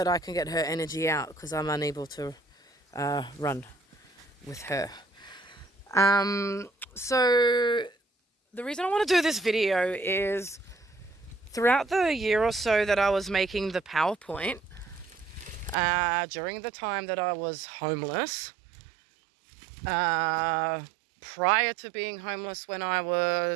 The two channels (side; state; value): left; drops out; at 15.8 s